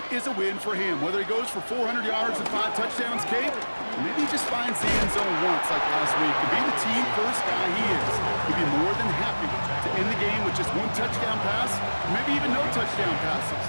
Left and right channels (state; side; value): inverted; both; correlation -1.00